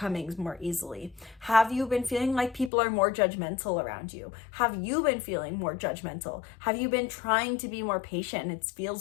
more easily? Have you been feeling like people are more judgmental around you? Have you been feeling more judgmental? Have you been trying to be more patient and it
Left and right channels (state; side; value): drops out; right; at 2.7 s